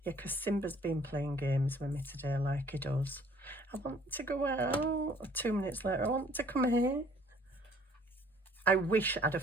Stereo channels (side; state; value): both; normal; correlation 0.57